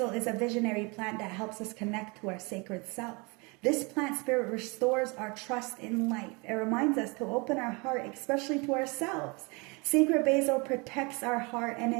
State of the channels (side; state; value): left; quieter; 28.8 dB